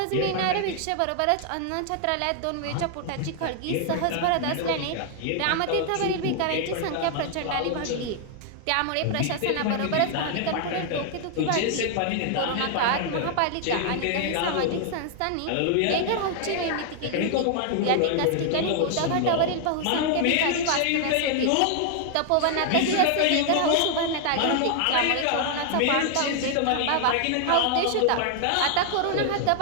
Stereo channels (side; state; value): both; different; correlation 0.00